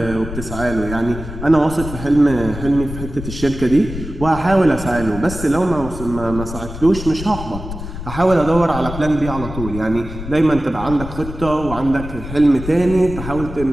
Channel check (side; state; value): left; noise; rumble, 9 dB below the sound